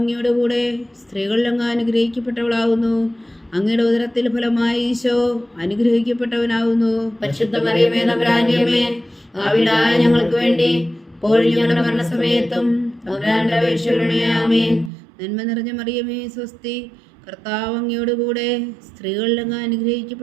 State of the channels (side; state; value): left; drops out; at 14.9 s